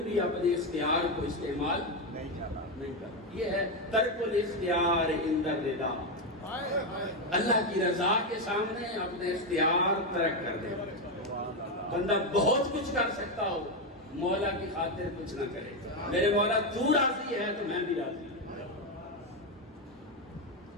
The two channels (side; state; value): both; normal; correlation 0.08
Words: بھی اپنے اختیار کو استعمال نہیں کرتا۔ یہ ہے ترک الاختیار عند الرضا، اللہ کی رضا کے سامنے اپنے اختیار ترک کر دے۔ بندہ بہت کچھ کر سکتا ہو، مولا کی خاطر کچھ نہ کرے، میرے مولا تو راضی ہے تو میں بھی راضی ہوں۔